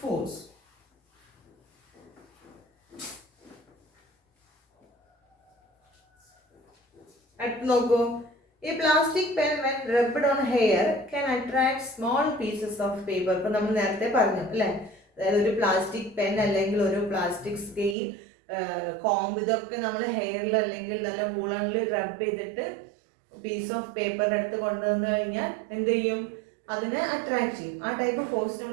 force. അടുത്ത് നോക്കൂ, ഈ plastic pen when rubbed on hair can attract small pieces of paper. ഇപ്പൊ നമ്മൾ നേരത്തെ പറഞ്ഞു അല്ലേ, അതായത് ഒരു പ്ലാസ്റ്റിക് പെൻ അല്ലെങ്കിൽ ഒരു പ്ലാസ്റ്റിക് സ്കെയിൽ, കോംബ്, ഇതൊക്കെ നമ്മൾ ഹെയറിൽ അല്ലെങ്കിൽ നല്ല വൂളണിൽ റബ്ബ് ചെയ്തിട്ട് പീസ് ഓഫ് പേപ്പറിൻ്റെ അടുത്ത് കൊണ്ടുവന്നു കഴിഞ്ഞാൽ എന്ത് ചെയ്യും? അതിനെ അട്രാക്ട് ചെയ്യും. ആ ടൈപ്പ് ഫോഴ്സ്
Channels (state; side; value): drops out; left; at 17.9 s